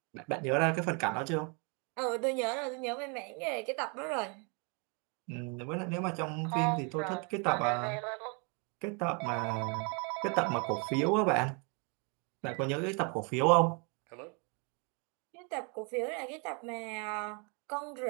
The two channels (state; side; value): quieter; left; 35.0 dB